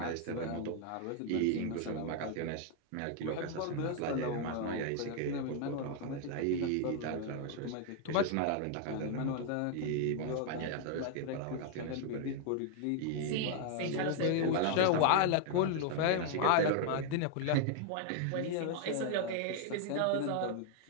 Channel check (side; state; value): both; different; correlation 0.00